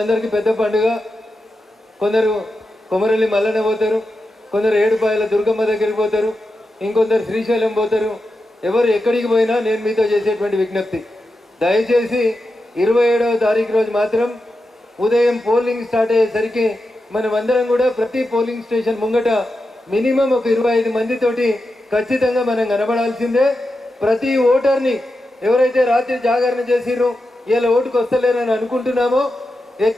పెద్ద పండుగ. కొందరు కొమరల్లి మల్లన్న పోతారు, కొందరు ఏడుపాయల దుర్గమ్మ దగ్గరికి పోతారు, ఇంకొందరు శ్రీశైలం పోతారు. ఎవరు ఎక్కడికి పోయినా నేను మీతో చేసేటువంటి విజ్ఞప్తి, దయచేసి 27వ తారీఖు రోజు మాత్రం ఉదయం పోలింగ్ స్టార్ట్ అయ్యేసరికి మనమందరం కూడా ప్రతి పోలింగ్ స్టేషన్ ముంగట మినిమం ఒక 25 మందితోటి ఖచ్చితంగా మనం కనబడాల్సిందే. ప్రతి ఓటర్ని ఎవరైతే రాత్రి జాగరణ చేసిరో ఇలా ఓటుకు వస్తలేరని అనుకుంటున్నామో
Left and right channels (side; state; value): both; normal; correlation 0.89